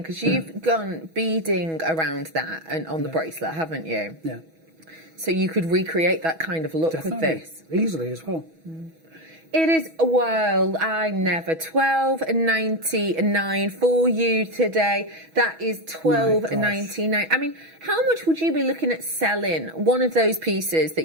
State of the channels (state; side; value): late; left; 6.2 ms